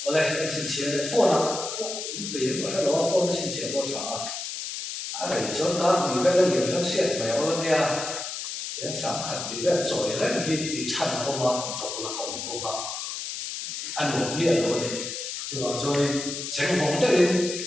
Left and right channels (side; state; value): left; noise; hiss, 6 dB below the sound